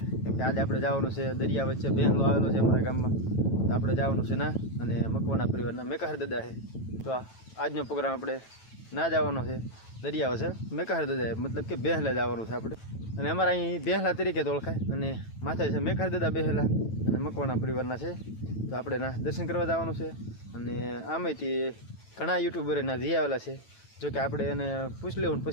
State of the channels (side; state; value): right; late; 9.1 ms